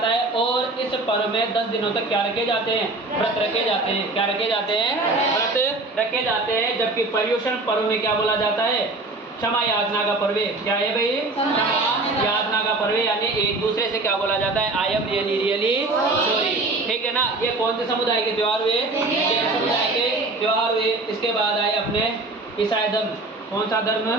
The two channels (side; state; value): left; quieter; 3.1 dB